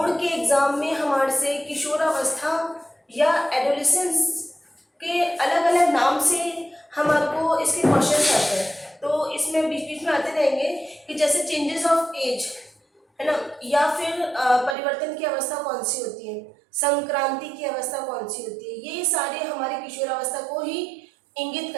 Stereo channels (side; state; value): left; drops out; at 14.8 s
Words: के एग्जाम में हमारे से किशोरावस्था या एडोलेसेंस के अलग अलग नाम से हमारे को इसके क्वेश्चन आते हैं। तो इसमें बीच बीच में आते रहेंगे कि जैसे चेंजेस ऑफ एज है ना, या फिर परिवर्तन की अवस्था कौन सी होती है, संक्रांति की अवस्था कौन सी होती है, ये सारे हमारे किशोरावस्था को ही इंगित